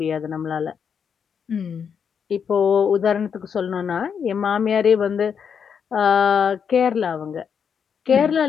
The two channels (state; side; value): quieter; right; 7.1 dB